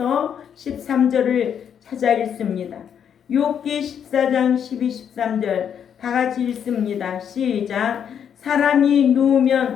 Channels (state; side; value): quieter; right; 8.3 dB